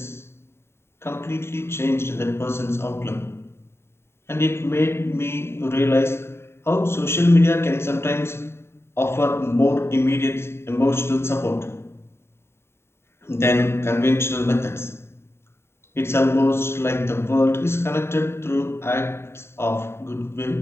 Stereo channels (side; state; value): right; late; 0.12 ms